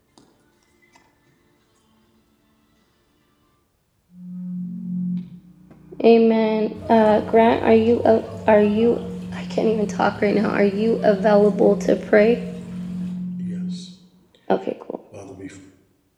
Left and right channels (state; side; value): identical; both; correlation 1.00